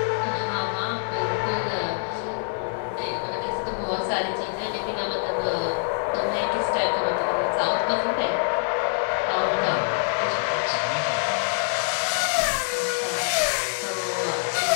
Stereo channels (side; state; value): right; silent; digital silence